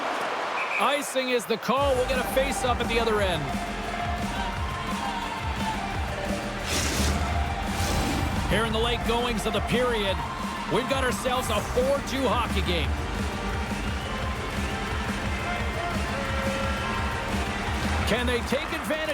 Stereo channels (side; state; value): both; identical; correlation 1.00